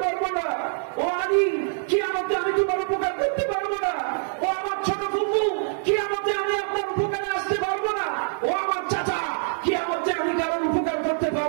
পারবো না। ও আলী, কিয়ামতে আমি তোমার উপকার করতে পারবো না। ও আমার ছোট ফুফু, কিয়ামতে আমি আপনার উপকারে আসতে পারবো না। ও আমার চাচা, কিয়ামতে আমি কারোর উপকার করতে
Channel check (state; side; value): silent; left; 62 dB below the other